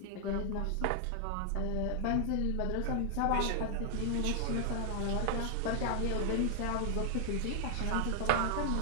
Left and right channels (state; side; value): different; both; correlation 0.00